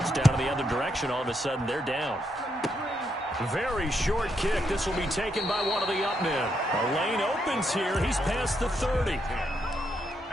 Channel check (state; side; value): normal; both; correlation 0.79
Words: in the other direction, all of a sudden they're down. Very short kick. This will be taken by one of the up men. A lane opens here. He's past the 30.